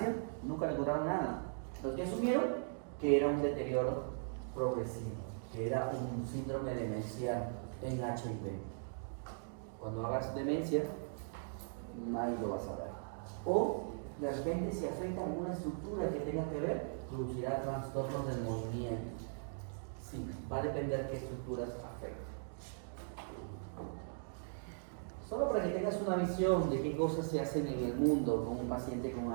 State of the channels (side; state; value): left; silent; digital silence